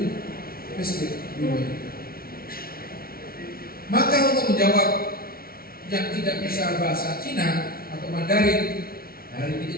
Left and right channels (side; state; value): right; late; 0.43 ms